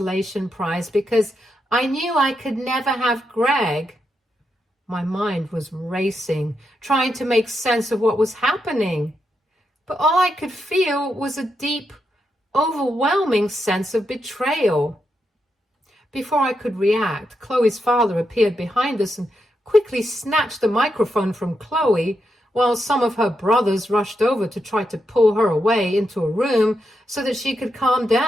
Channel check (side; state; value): both; normal; correlation 0.84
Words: prize because I knew I could never have Greg." My mind was racing, trying to make sense of what was happening. But all I could feel was a deep, overwhelming sense of betrayal. Before I could react, Chloe's father appeared behind us and quickly snatched the microphone from Chloe, while some of her brothers rushed over to try to pull her away into a room so that she could calm